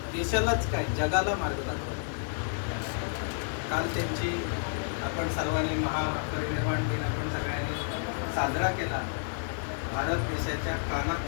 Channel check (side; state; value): right; silent; digital silence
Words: देशालाच काय, जगाला मार्ग दाखवला. काल त्यांची आपण सर्वांनी महापरिनिर्वाण दिन आपण सगळ्यांनी साजरा केला. भारत देशाच्या